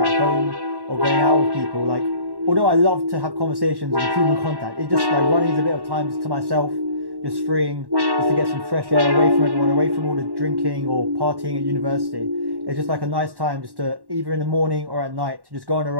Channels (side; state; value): left; late; 1.1 ms